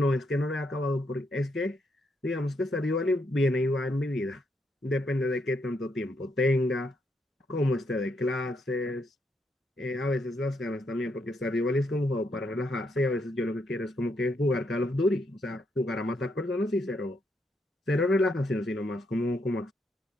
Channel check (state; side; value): normal; both; correlation 0.77